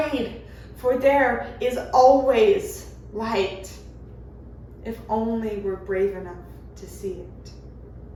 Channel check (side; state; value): both; identical; correlation 1.00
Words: for there is always light, if only we're brave enough to see it.